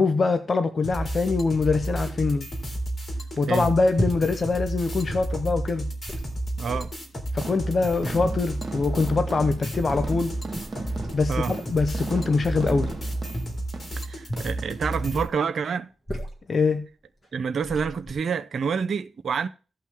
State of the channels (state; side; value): normal; both; correlation 0.87